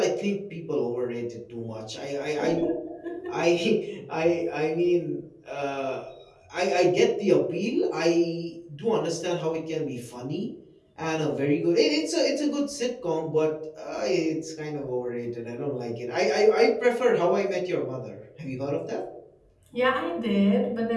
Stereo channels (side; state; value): both; identical; correlation 1.00